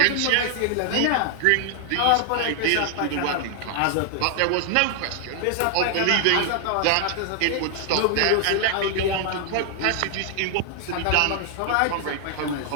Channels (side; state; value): both; different; correlation 0.00